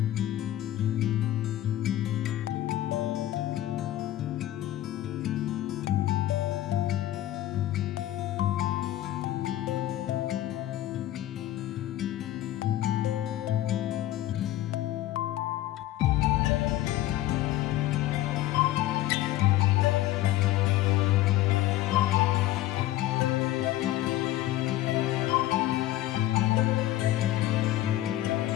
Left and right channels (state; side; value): quieter; right; 14.4 dB